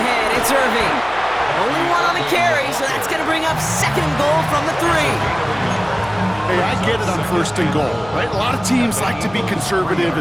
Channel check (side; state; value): left; noise; hum, 19 dB below the sound